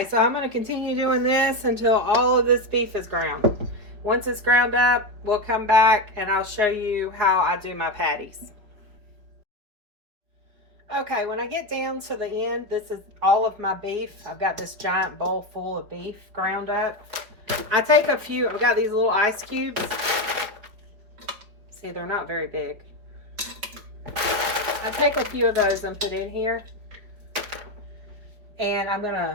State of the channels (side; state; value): left; late; 5.1 ms